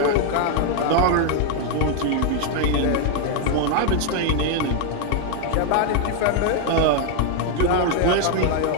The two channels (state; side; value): different; both; correlation 0.00